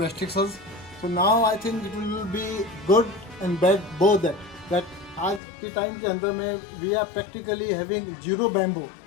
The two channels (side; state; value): right; drops out; at 5.4 s